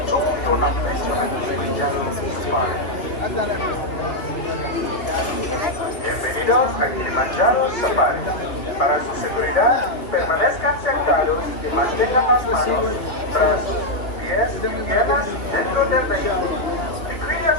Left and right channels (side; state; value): right; late; 2.2 ms